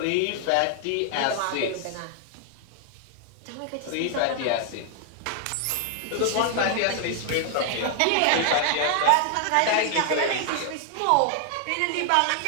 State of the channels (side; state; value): both; different; correlation 0.00